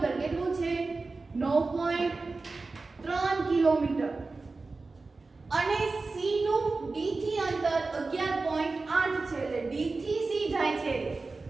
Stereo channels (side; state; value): left; quieter; 3.7 dB